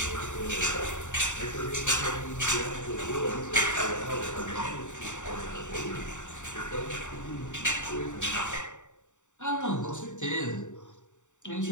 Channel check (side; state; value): right; late; 0.85 ms